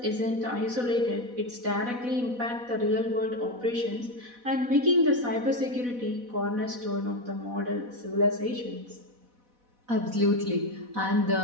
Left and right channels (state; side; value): late; left; 4.1 ms